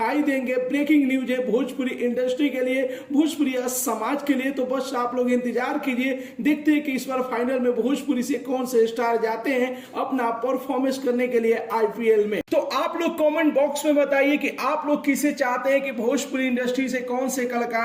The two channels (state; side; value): identical; both; correlation 1.00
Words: देंगे। ब्रेकिंग न्यूज है भोजपुरी इंडस्ट्री के लिए, भोजपुरी समाज के लिए। तो बस आप लोग इंतजार कीजिए, देखते हैं कि इस बार फाइनल में भोजपुरी से कौन से स्टार जाते हैं अपना परफॉर्मेंस करने के लिए आईपीएल में। तो आप लोग कमेंट बॉक्स में बताइए कि आप लोग किसे चाहते हैं कि भोजपुरी इंडस्ट्री से कौन से